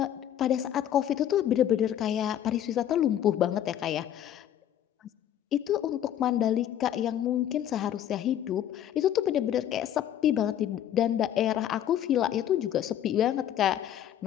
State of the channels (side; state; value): right; quieter; 10.8 dB